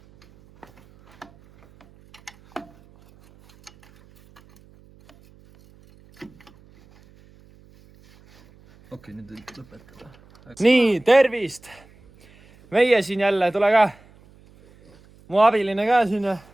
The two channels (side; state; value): right; noise; hum, 28 dB below the sound